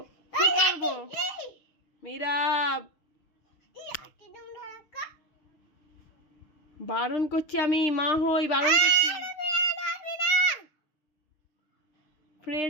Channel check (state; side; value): late; right; 6.4 ms